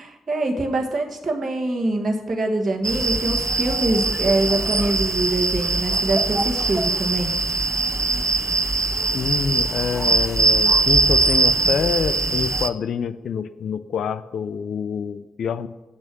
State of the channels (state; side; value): normal; both; correlation 0.57